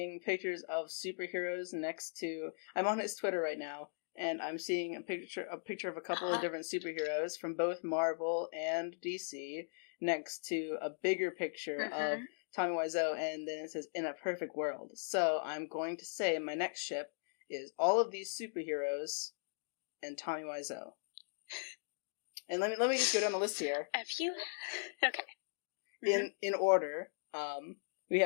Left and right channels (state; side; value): silent; right; digital silence